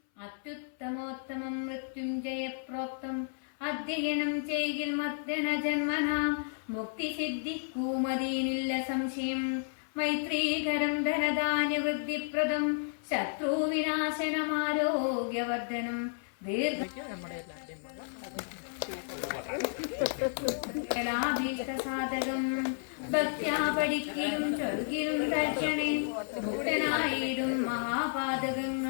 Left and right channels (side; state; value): right; silent; 56 dB below the other